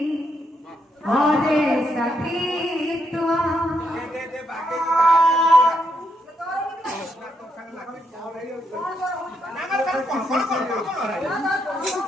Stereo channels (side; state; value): both; normal; correlation 0.78